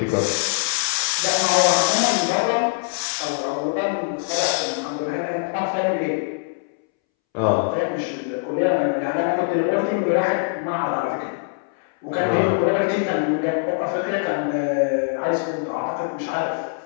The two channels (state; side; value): silent; right; 64 dB below the other